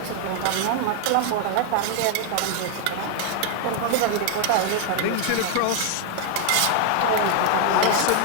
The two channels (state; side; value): different; both; correlation 0.01